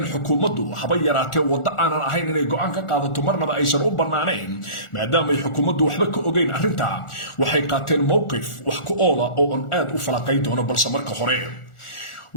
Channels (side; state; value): right; late; 1.4 ms